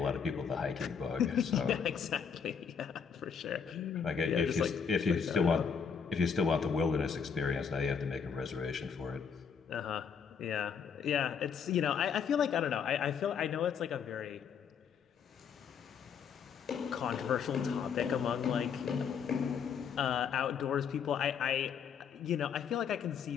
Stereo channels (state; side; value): quieter; right; 6.8 dB